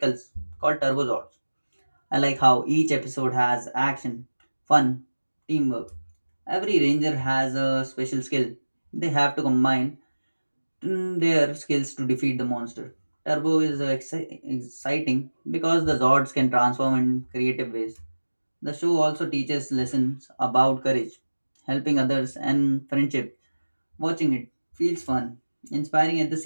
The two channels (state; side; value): inverted; both; correlation -1.00